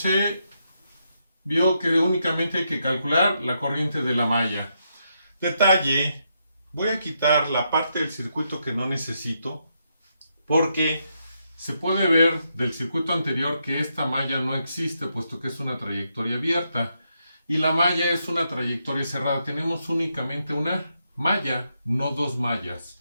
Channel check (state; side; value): inverted; both; correlation -0.80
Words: vio que únicamente hay que calcular la corriente de la malla. Detalle, voy a quitar la parte del circuito que no necesito porque se puede ver del circuito anterior que esta malla no existe puesto que es una trayectoria abierta y la malla es una trayectoria cerrada. Tenemos únicamente una malla, no dos mallas.